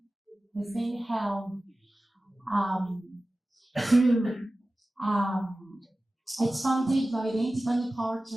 has been held through it's funded by the Independent Power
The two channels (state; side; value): normal; both; correlation 0.96